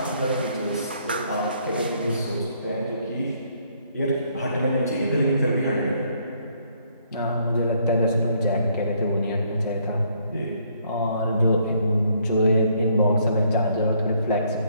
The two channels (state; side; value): inverted; both; correlation -0.68